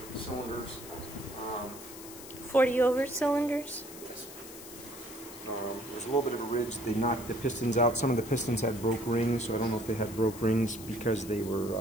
cylinders. 40 over cylinders? Yes. There's a little bit of a ridge. They knocked the pistons out. Some of the pistons had broke rings, so I don't know if they had broke rings because they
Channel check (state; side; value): noise; left; hiss, 15 dB below the sound